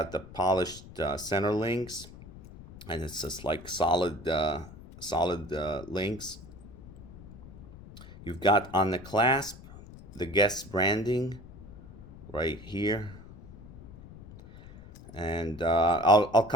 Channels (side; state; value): left; noise; rumble, 17 dB below the sound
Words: the polished center links, and it's just like solid links. You've got on the clasp the Guess branding right here, and I'll